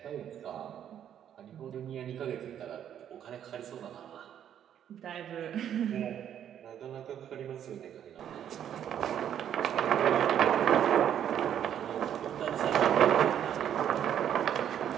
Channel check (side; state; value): left; quieter; 9.8 dB